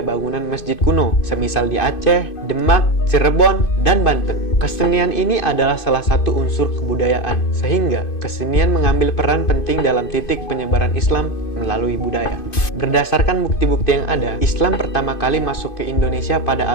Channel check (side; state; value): right; late; 2.5 ms